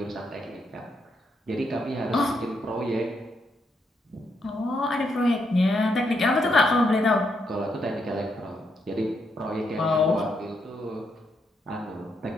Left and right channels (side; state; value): both; normal; correlation 0.79